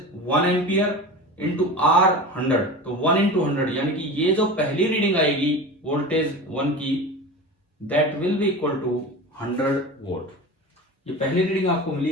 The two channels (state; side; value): normal; both; correlation 0.31